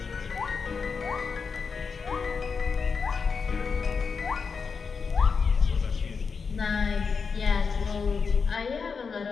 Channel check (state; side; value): quieter; right; 5.4 dB